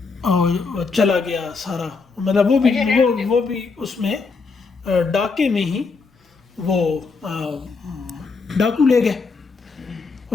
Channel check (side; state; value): right; quieter; 4.5 dB